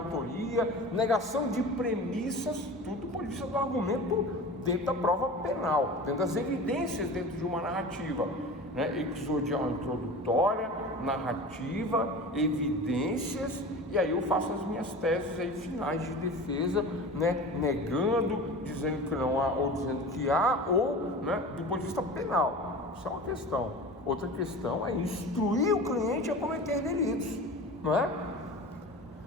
negação de premissas, tudo do ponto de vista do argumento dentro da prova penal, dentro das evidências dentro de uma narrativa, né? Exodial introdutória, narrativa, evidências, e aí eu faço as minhas teses aí finais de defesa, né? Negando, dizendo que não há ou dizendo que há, ou, né, do ponto de vista penal. Isso é uma questão. Outra questão é instruir o cliente a cometer delitos, não é?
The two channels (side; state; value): both; normal; correlation 0.34